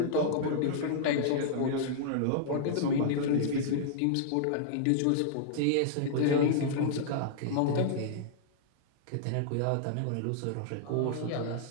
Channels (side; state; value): both; different; correlation -0.02